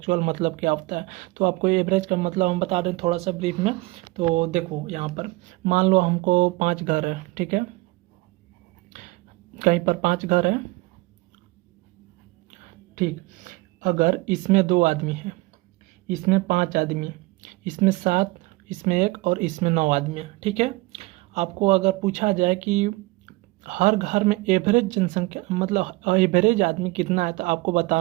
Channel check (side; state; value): left; quieter; 22.5 dB